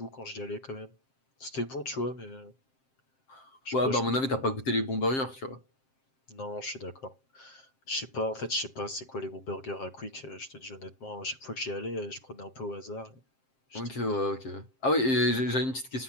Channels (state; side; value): late; right; 7.6 ms